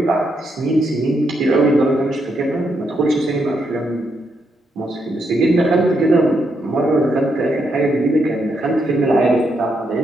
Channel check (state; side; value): normal; both; correlation 0.79